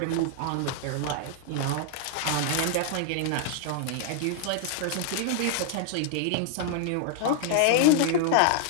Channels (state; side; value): different; both; correlation 0.00